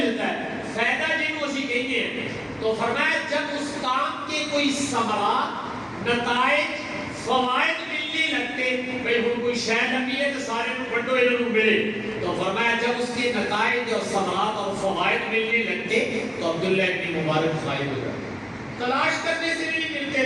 ہے، فائدہ جن اسی کہتے ہیں۔ تو فرمایا جب اس کام کے کوئی ثمرات، نتائج، فوائد ملنے لگتے، بھئی ہم کوئی شاید نبی ہے تو سارے کو بڑھو انہوں ملے، تو فرمایا جب اس کے نتائج اور ثمرات اور فوائد ملنے لگتے تو عبداللہ ابن مبارک غائب ہو جاتے، تلاش کرنے سے نہیں ملتے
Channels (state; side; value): identical; both; correlation 1.00